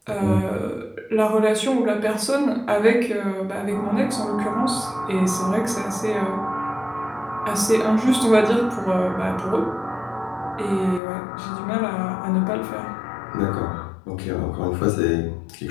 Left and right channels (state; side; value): drops out; right; at 11.0 s